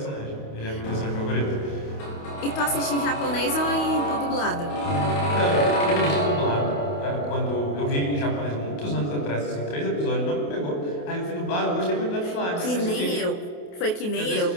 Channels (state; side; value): late; right; 28 ms